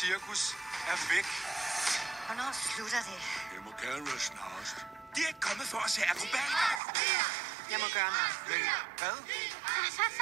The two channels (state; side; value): drops out; left; at 6.8 s